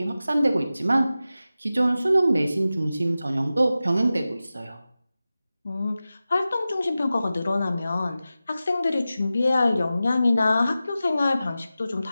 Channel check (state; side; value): inverted; both; correlation -0.94